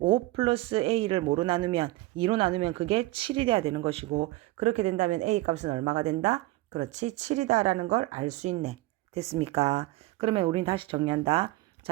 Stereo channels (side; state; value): left; quieter; 19.0 dB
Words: 플러스 A를 뭐로 나누면 2로 나누면 그게 7이 돼야 되는 것이고 그렇게 된다면 A 값은 얼마가 된다? 그렇지 7이다 라는 걸 알 수 있네. 됐습니까? 그러면 우린 다시 정리한다.